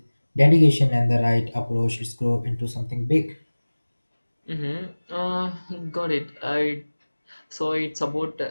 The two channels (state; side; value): inverted; both; correlation -1.00